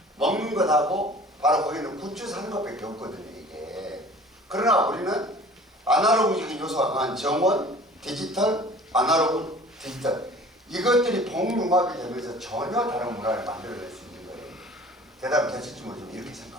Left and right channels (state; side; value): normal; both; correlation 0.46